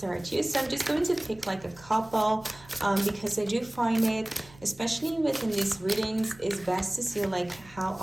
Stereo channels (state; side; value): noise; right; hum, 23 dB below the sound